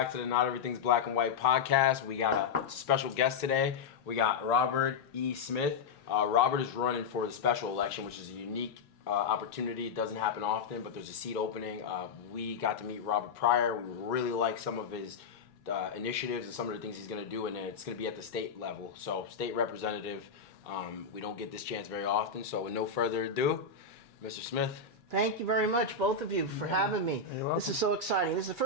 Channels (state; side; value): quieter; right; 5.1 dB